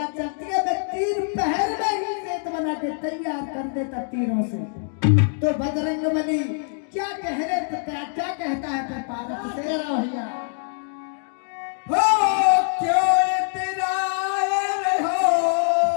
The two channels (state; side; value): silent; right; 63 dB below the other